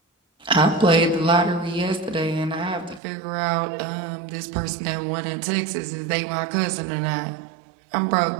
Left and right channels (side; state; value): left; drops out; at 3.0 s